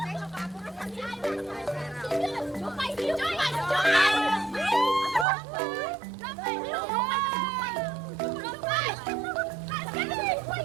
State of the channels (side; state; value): left; drops out; at 5.2 s